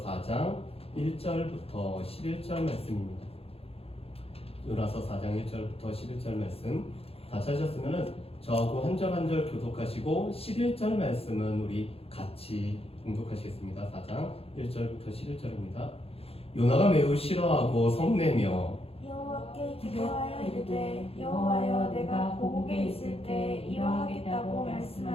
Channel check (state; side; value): late; right; 0.28 ms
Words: 4장 1절부터 11절 말씀입니다. 요나서 4장 1절부터 11절 말씀 다 찾으셨으면 저하고 한 절 한 절 교독하시고 11절 말씀은 우리 같이 공독하시겠습니다. 4장 1절부터 11절입니다. 요나가 매우 싫어하고 성내며 여호와께 기도하여 이르되 여호와여 내가 고국에 있을 때 이러하겠다고